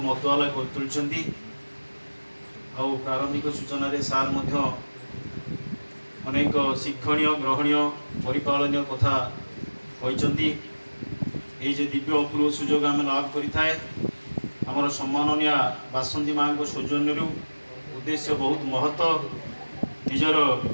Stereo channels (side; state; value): both; inverted; correlation -1.00